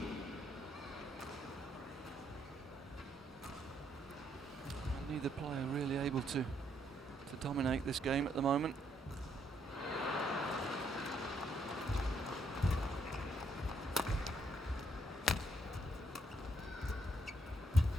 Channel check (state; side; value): normal; both; correlation 0.73